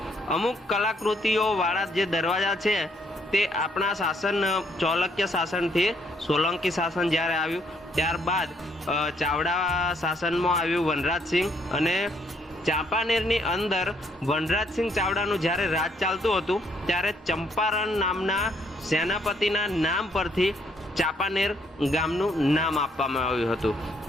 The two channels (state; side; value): normal; both; correlation 0.69